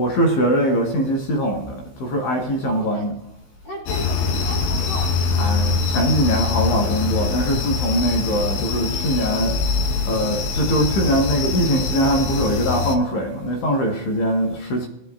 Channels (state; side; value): late; right; 16 ms